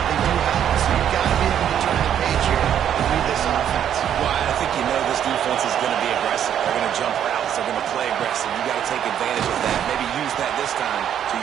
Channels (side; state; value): left; quieter; 9.7 dB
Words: They do have it. So you've got to be able to turn the page here and read this offense. Well, I think you know this defense is going to be aggressive. They're going to jump routes. They're going to play aggressive. You got to take advantage of that. Maybe use that this time to